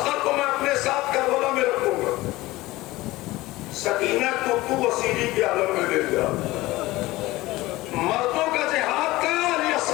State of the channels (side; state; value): right; quieter; 18.9 dB